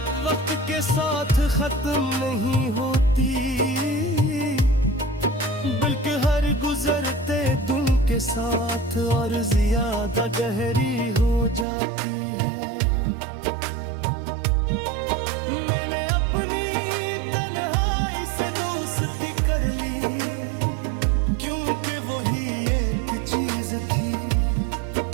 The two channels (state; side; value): drops out; left; at 11.7 s